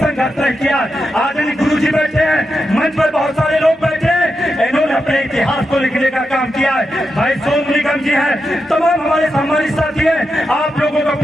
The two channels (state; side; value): normal; both; correlation 0.88